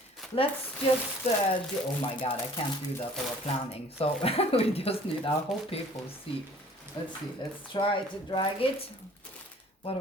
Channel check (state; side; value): normal; both; correlation 0.52